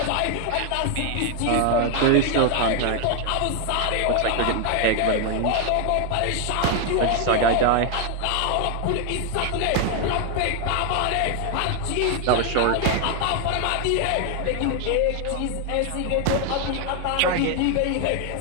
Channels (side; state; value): both; different; correlation 0.00